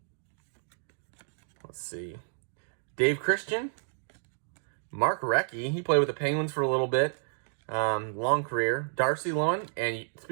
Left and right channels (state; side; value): silent; left; digital silence